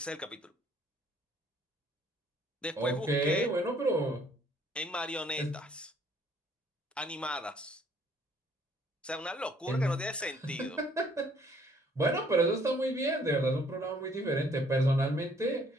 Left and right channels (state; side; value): normal; both; correlation 0.62